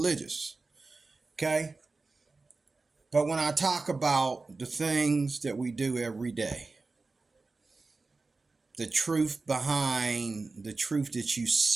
Okay? But when I talk about the things that we do every day, the truth behind the truth that you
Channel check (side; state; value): left; quieter; 3.8 dB